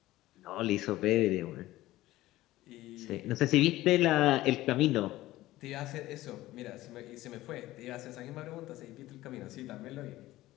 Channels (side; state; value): right; quieter; 16.6 dB